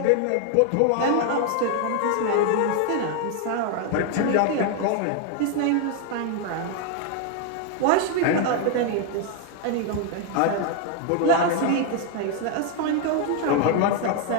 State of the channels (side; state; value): both; different; correlation 0.00